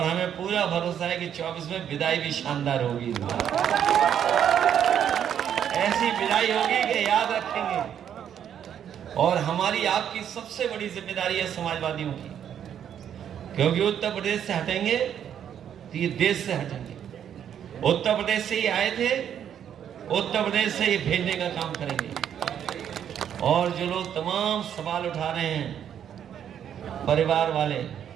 हमें पूरा भरोसा है कि 24 में विदाई भी शानदार होगी। ऐसी विदाई होगी कि याद रखेंगे। और हमारी आपकी सबसे बड़ी जिम्मेदारी है समाजवादियों की, क्योंकि उत्तर प्रदेश से हटेंगे तो ये देश से हटेंगे। उत्तर प्रदेश से ही आए थे, उत्तर प्रदेश से ये भेजने का काम करेंगे। और जो लोग तमाम सवाल उठा रहे हैं परिवार वाले,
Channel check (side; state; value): left; quieter; 9.2 dB